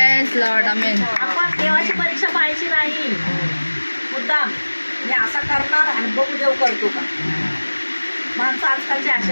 Lord. Amen. आपण देवाची परीक्षा पाहायची नाही मुद्दाम. मी असा करणार आणि बघू देव करतो का. माणसं आजकालची अशी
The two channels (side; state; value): both; inverted; correlation -1.00